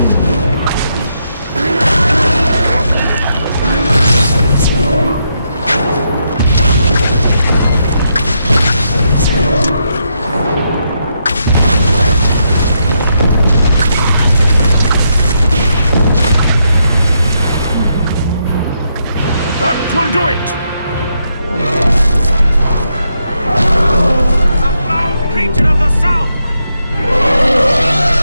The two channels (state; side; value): inverted; both; correlation -0.80